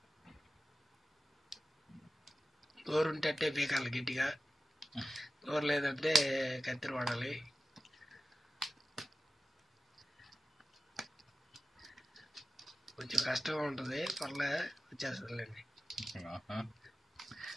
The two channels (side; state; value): both; normal; correlation 0.94